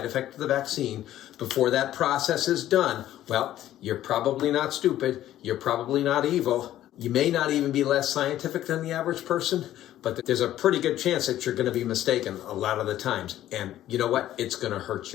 effect of the vaccine before that process is done, well, you're probably not stupid, you're probably not evil, you may not even be less scientific than the average person, but there's a pretty good chance that you're going to be mistaken a lot of the times. And you know what? It's going to hurt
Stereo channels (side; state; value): right; quieter; 13.0 dB